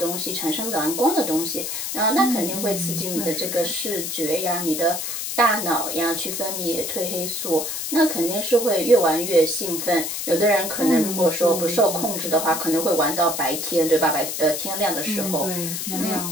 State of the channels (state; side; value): noise; left; hiss, 4 dB below the sound